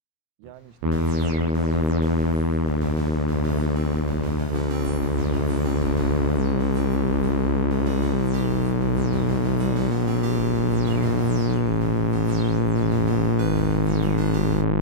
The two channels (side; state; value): left; late; 26 ms